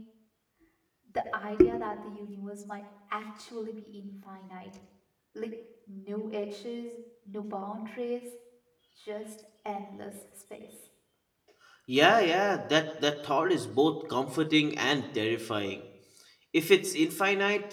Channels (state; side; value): identical; both; correlation 1.00